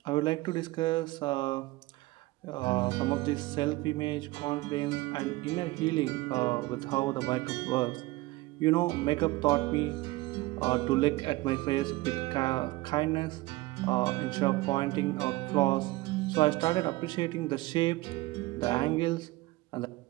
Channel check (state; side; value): quieter; left; 19.9 dB